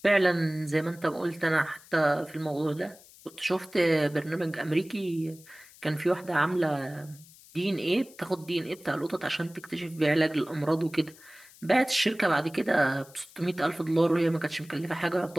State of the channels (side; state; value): left; noise; hiss, 23 dB below the sound